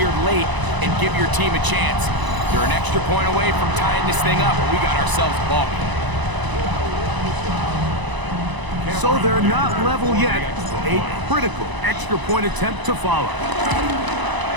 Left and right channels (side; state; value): left; late; 1.0 ms